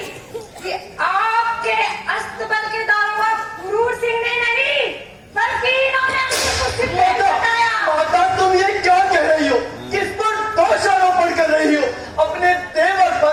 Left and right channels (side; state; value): both; identical; correlation 1.00